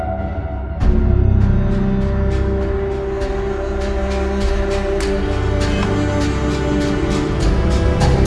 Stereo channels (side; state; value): both; identical; correlation 1.00